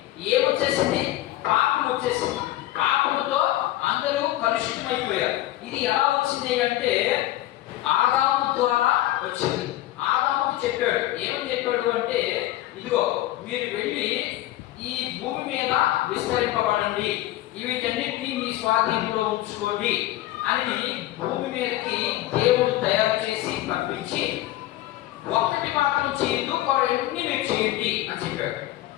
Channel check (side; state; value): right; quieter; 15.3 dB